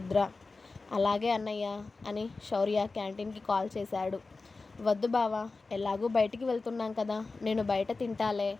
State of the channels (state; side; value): quieter; right; 3.8 dB